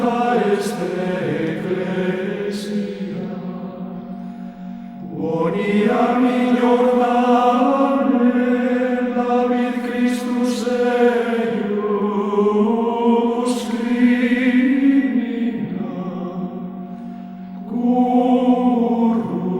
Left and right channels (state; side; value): identical; both; correlation 1.00